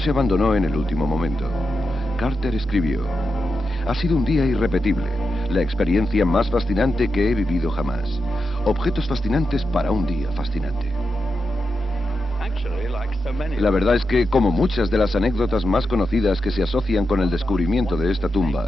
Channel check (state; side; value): normal; both; correlation 0.88